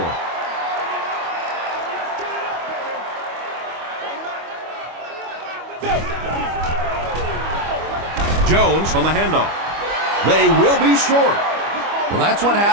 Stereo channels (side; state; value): left; late; 25 ms